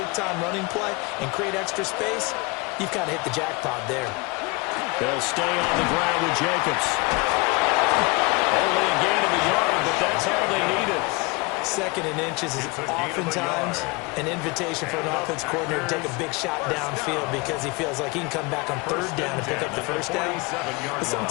running play and create extra space, you've kind of hit the jackpot there. They'll stay on the ground with Jacobs. Only a gain of a yard, but that's all they needed. 2nd and inches is oftentimes an invitation for an offense coordinator to take a big shot downfield because he feels like he can come back on 3rd down and pick up the first down. But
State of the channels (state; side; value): quieter; right; 26.5 dB